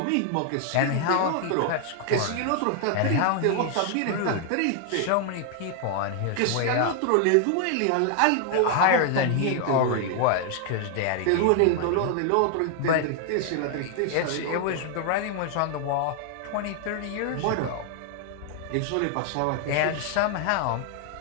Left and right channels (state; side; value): different; both; correlation 0.00